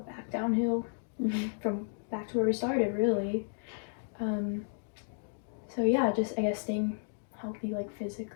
downhill from back to where we started, really. So yeah, just I guess staying healthy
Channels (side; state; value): right; silent; digital silence